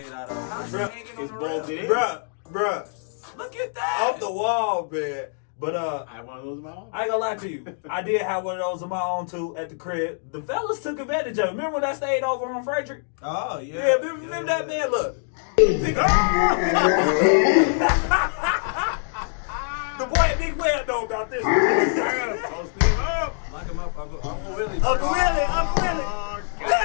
out of. How's it hanging on It's the bolted rail? in. Bruh. Look at that. Off the wall, man. But I have one of those in my own. I ain't gonna lie to you. I did have one of those of my own too at the crib. The fellas took advantage of it. Remember when I stayed over on Frederick? Oh, yeah. Yeah, remember that man? Look. The boy at Big Well know about this. I gotta post him up. Lock him up. Uncle Willie. Uncle Willie.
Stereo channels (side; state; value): right; silent; digital silence